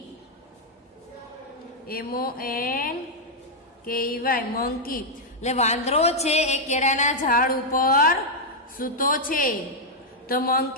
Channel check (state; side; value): normal; both; correlation -0.02